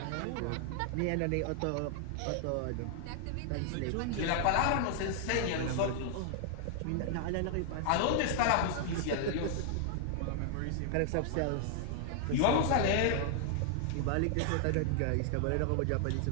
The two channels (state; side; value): different; both; correlation 0.00